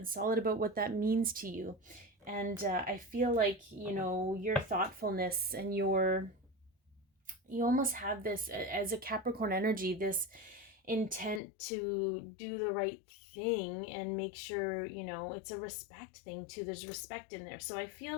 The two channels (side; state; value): right; drops out; at 11.4 s